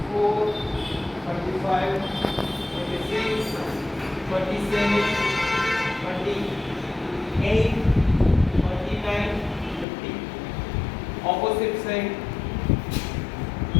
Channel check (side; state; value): right; drops out; at 9.9 s